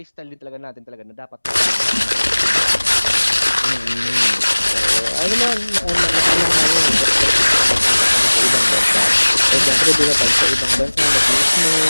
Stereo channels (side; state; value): both; inverted; correlation -1.00